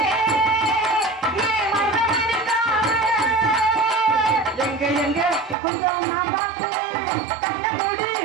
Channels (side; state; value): left; drops out; at 5.6 s